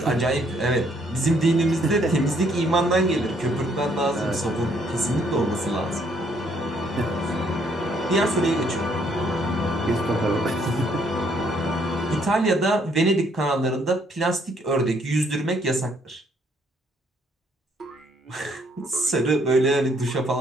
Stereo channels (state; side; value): normal; both; correlation 0.67